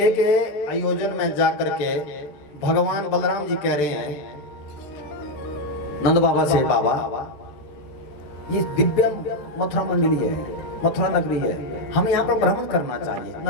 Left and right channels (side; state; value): right; late; 13 ms